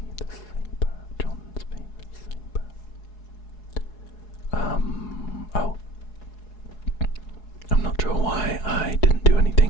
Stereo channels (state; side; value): late; right; 4.7 ms